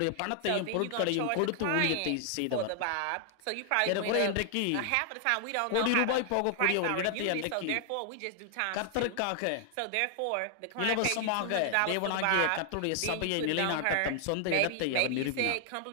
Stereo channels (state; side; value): different; both; correlation 0.00